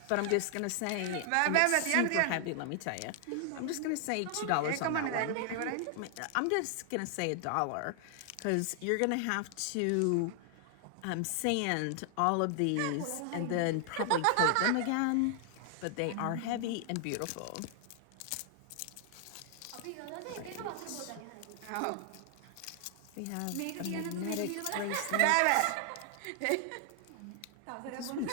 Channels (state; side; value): different; both; correlation 0.00